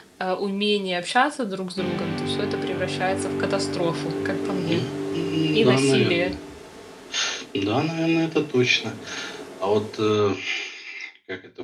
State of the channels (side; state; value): both; identical; correlation 1.00